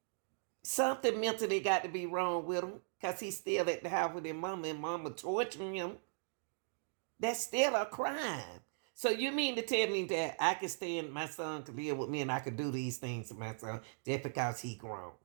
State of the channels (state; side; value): silent; left; digital silence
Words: something mentally got to be wrong with him because he's still at the house with his mama and mama torturing him. That's still a crime. So you mean to tell me that I can stand my son to live with me and I could do these things to my son just because he grown?